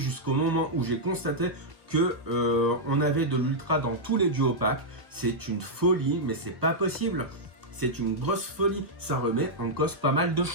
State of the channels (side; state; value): left; late; 1.2 ms